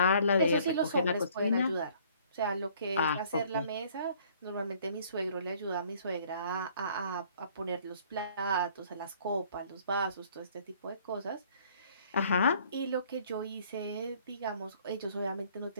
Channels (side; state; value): both; inverted; correlation -0.58